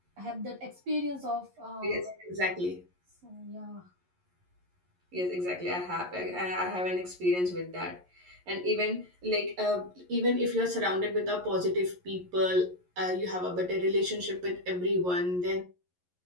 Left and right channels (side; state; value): left; late; 11 ms